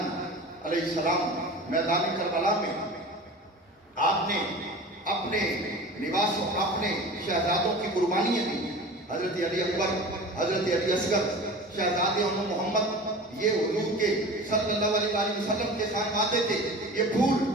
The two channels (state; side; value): normal; both; correlation 0.36